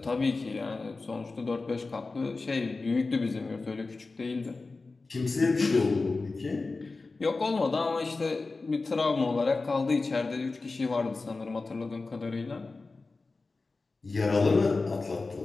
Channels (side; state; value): right; quieter; 3.7 dB